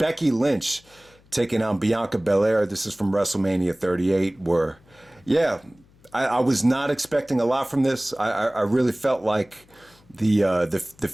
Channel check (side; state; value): left; noise; hum, 29 dB below the sound